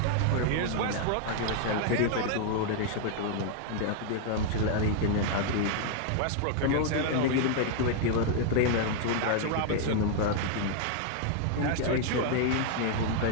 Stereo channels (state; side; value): different; both; correlation 0.00